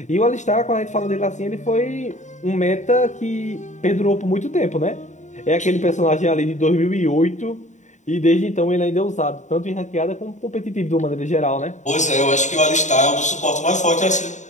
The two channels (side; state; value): right; late; 0.35 ms